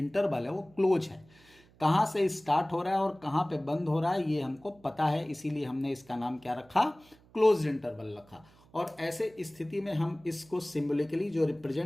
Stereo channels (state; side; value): noise; right; hum, 28 dB below the sound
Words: है वो क्लोज है, कहाँ से स्टार्ट हो रहा है और कहाँ पे बंद हो रहा है ये हमको पता है, इसीलिए हमने इसका नाम क्या रखा, क्लोज्ड इंटरवल रखा। और ऐसे स्थिति में हम इसको सिंबॉलिकली जो